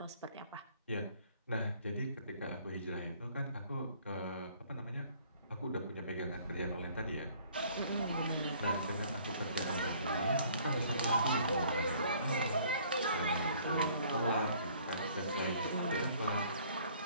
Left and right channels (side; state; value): both; inverted; correlation -0.57